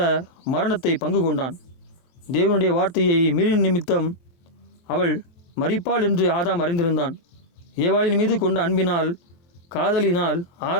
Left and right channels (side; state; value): right; late; 23 ms